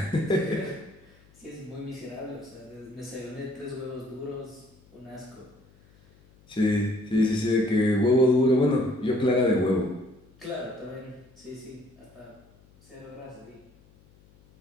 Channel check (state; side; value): noise; left; hum, 28 dB below the sound